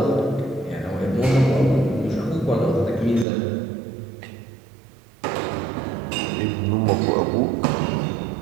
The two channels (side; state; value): left; drops out; at 3.2 s